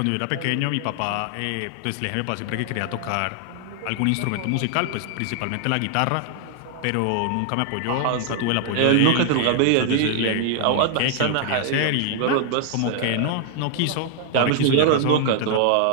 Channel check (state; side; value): different; both; correlation 0.00